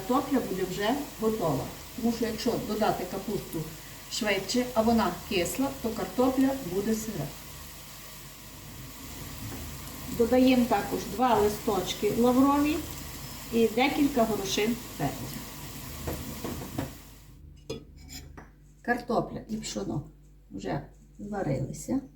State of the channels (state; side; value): identical; both; correlation 1.00